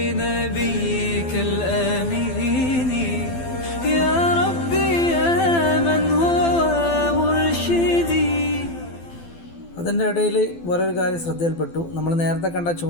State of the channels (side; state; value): right; late; 12 ms